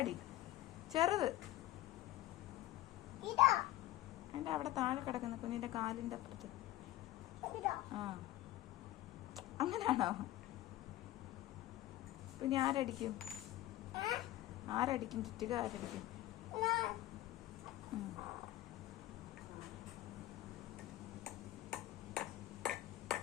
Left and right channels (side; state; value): right; quieter; 15.4 dB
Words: ചെറുത് അതിന്റെ അവിടെ താഴെ കിടക്കുന്ന കുഞ്ഞിന്റെ കാലിന്റെ അപ്പുറത്ത്. ആ അങ്ങനാണോ? പിന്നെ ആരടിക്കും? ആരടിക്കും? ചുറ്റിക ആരടിക്കും?